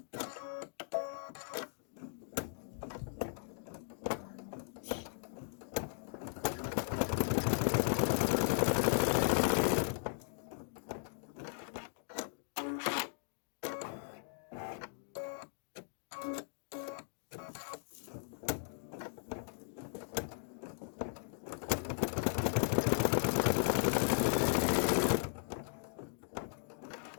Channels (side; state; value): right; silent; digital silence